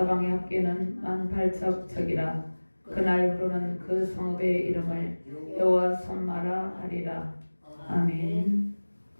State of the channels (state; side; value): inverted; both; correlation -1.00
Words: 합계는 18,000척이라. 그날부로는 그 성읍의 이름을 여호와 선마라 하리라. 아멘.